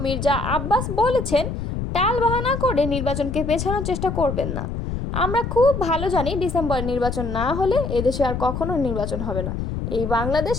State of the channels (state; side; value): noise; left; rumble, 4 dB below the sound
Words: মির্জা আব্বাস বলেছেন, টালবাহানা করে নির্বাচনকে পেছানোর চেষ্টা করবেন না। আমরা খুব ভালো জানি, ডিসেম্বরে নির্বাচন না হলে এদেশে আর কখনো নির্বাচন হবে না। এই বাংলাদেশ